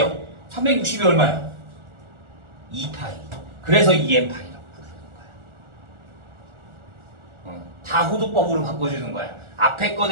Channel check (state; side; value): late; left; 1.4 ms